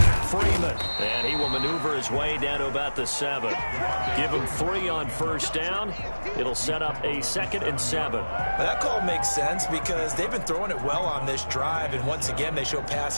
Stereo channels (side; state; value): both; inverted; correlation -1.00